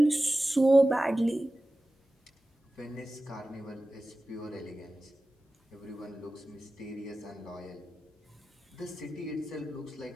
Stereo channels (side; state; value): both; normal; correlation 0.95